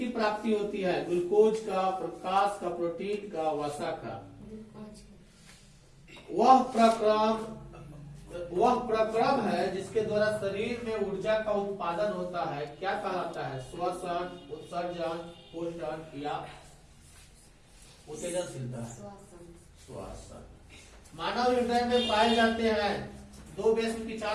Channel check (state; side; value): identical; both; correlation 1.00